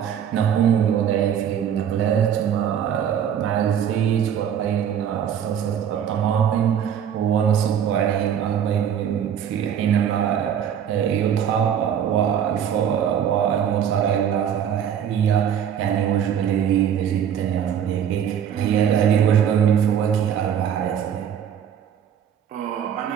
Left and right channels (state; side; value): quieter; left; 8.9 dB